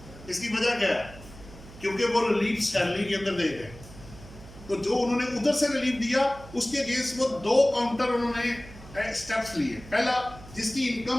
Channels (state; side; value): noise; right; hum, 18 dB below the sound